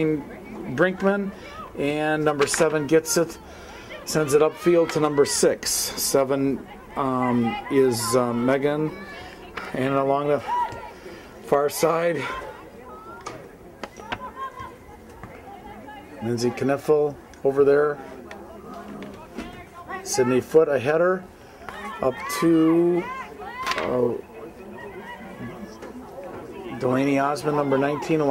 Brinkman. And number 7 gets it. Sends it upfield to number 6. 7 is Megan. And along the far side, Lindsay Kniffel over there. Sydney Foote, a header. Up to Delaney Osmond, number 19,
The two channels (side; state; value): both; identical; correlation 1.00